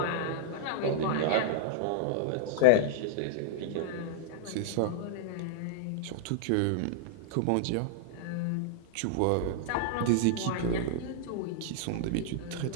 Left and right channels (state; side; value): different; both; correlation -0.01